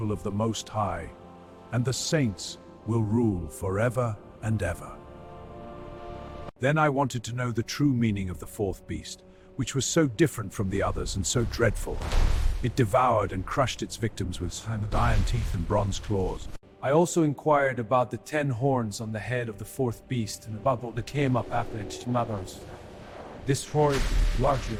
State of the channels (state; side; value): identical; both; correlation 1.00